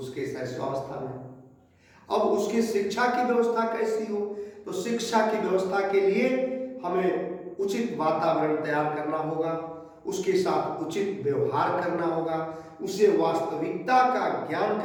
शैशवावस्था में। अब उसकी शिक्षा की व्यवस्था कैसी हो, तो शिक्षा की व्यवस्था के लिए हमें उचित वातावरण तैयार करना होगा, उसके साथ उचित व्यवहार करना होगा, उसे वास्तविकता का ज्ञान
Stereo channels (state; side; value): identical; both; correlation 1.00